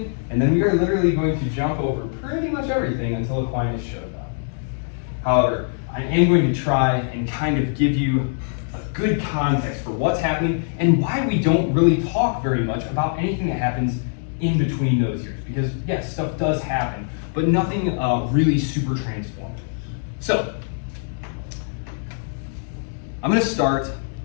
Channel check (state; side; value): silent; right; digital silence